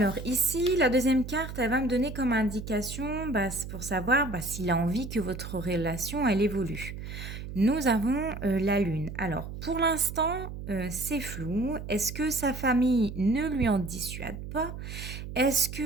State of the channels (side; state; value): right; noise; hum, 9 dB below the sound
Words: ici, la deuxième carte, elle va me donner comme indication, c'est pour savoir, s'il a envie que votre relation, elle évolue. Nous avons, la lune. Alors pour l'instant, c'est flou. Est-ce que sa famille ne lui en dissuade pas? Est-ce